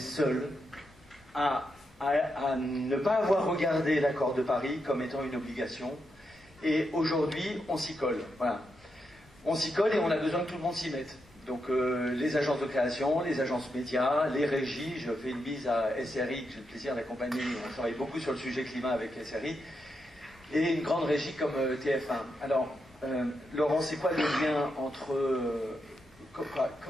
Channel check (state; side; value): normal; both; correlation 0.84